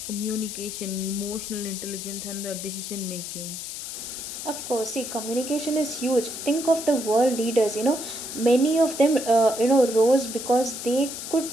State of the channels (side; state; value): left; noise; hiss, 8 dB below the sound